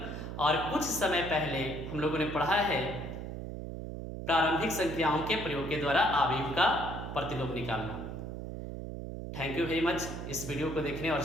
और कुछ समय पहले हम लोगों ने पढ़ा है प्रारंभिक संख्याओं के प्रयोग के द्वारा अवयव का प्रतिलोम निकालना। थैंक यू वेरी मच इस वीडियो को देखने और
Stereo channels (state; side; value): noise; right; hum, 7 dB below the sound